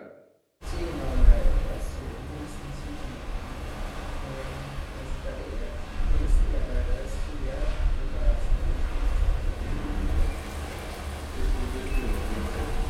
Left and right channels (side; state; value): both; identical; correlation 1.00